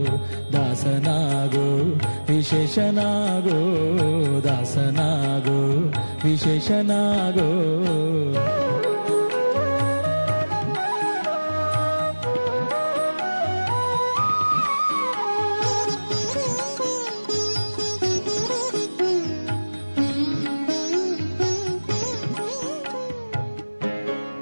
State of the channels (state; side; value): inverted; both; correlation -1.00